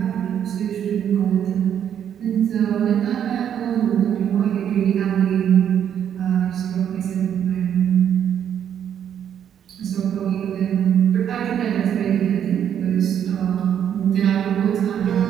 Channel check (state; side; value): quieter; left; 9.2 dB